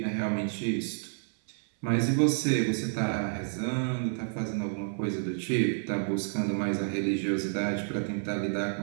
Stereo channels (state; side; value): silent; left; 58 dB below the other